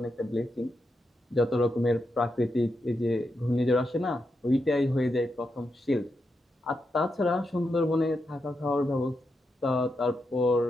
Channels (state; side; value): normal; both; correlation 0.85